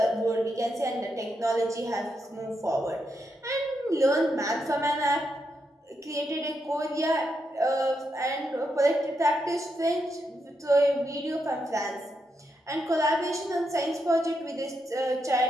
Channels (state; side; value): normal; both; correlation 0.83